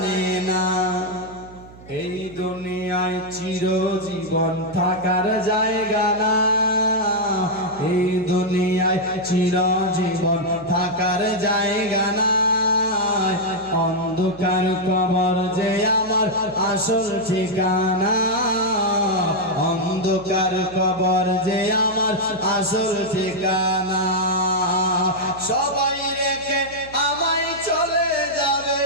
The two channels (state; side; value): noise; right; hum, 20 dB below the sound